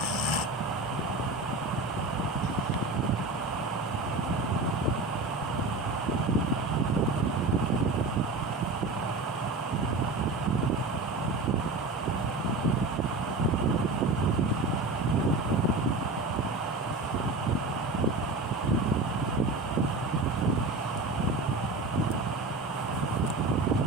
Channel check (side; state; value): left; quieter; 3.1 dB